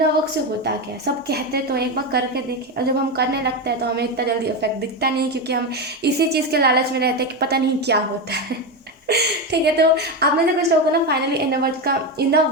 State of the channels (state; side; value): normal; both; correlation 0.14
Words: वर्क से होता क्या है, सब कहते तो एक बार करके देखें, और जब हम करने लगते हैं तो हमें इतना जल्दी इफेक्ट दिखता नहीं, क्योंकि हम इसी चीज़ के लालच में रहते हैं कि पता नहीं क्या होता है। ठीक है, तो आप में से कुछ लोगों को ना फाइनली इनर